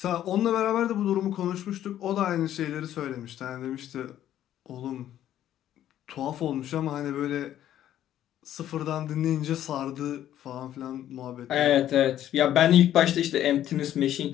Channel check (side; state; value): right; quieter; 11.8 dB